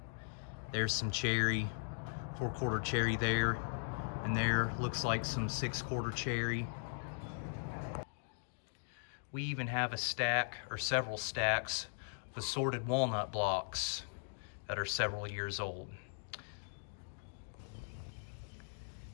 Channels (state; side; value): silent; right; digital silence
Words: there's some cherry, 4/4 cherry there, and there looks like some 6/4 cherry. We even have a stack or several stacks of assorted walnut blocks that are several years old.